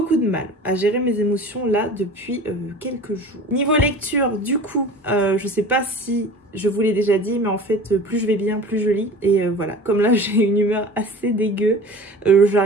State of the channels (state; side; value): normal; both; correlation 0.39